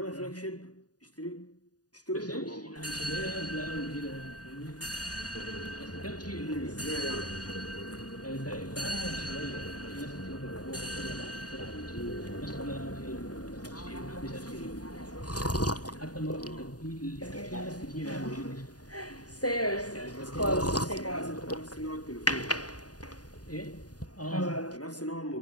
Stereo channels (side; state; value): right; late; 0.68 ms